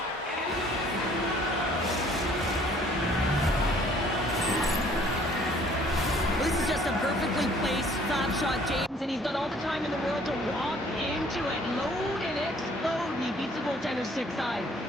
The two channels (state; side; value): normal; both; correlation 0.58